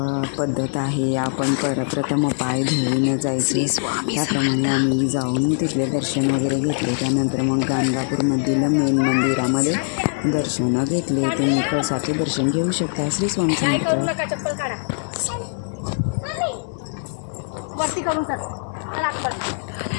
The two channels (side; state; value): right; silent; digital silence